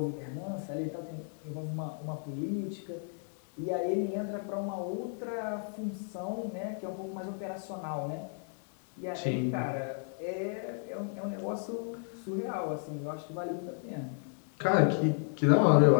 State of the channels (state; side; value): silent; right; 56 dB below the other